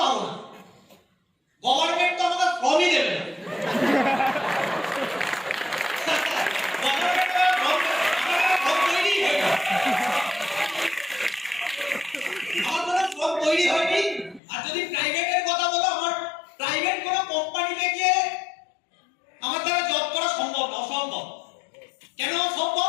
পাবো না, গভর্নমেন্ট তো আমাকে ফর্মই দেবে না। তৈরি হয়নি। আর যদি প্রাইভেটের কথা বলো, আমার প্রাইভেট কোনো কোম্পানিতে গিয়ে আমার দ্বারা জব করা সম্ভব না, অসম্ভব। কেন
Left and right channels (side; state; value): right; drops out; at 14.4 s